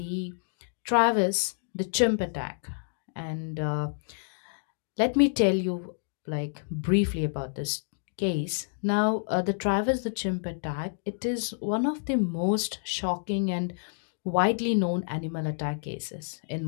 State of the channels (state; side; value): silent; right; digital silence